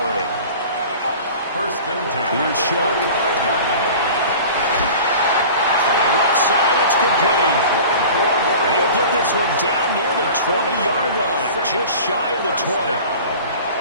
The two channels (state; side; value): inverted; both; correlation -0.40